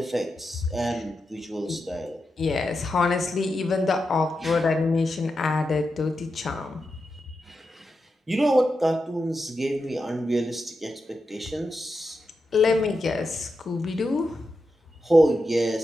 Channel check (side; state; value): both; normal; correlation 0.88